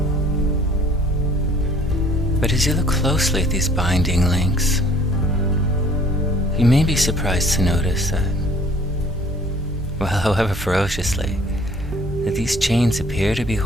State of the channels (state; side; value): normal; both; correlation 0.54